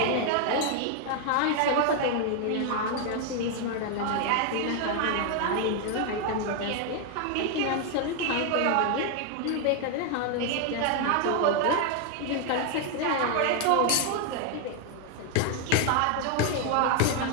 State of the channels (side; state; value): both; different; correlation 0.00